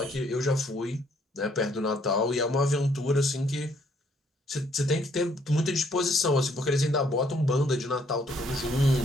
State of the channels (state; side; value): normal; both; correlation 0.67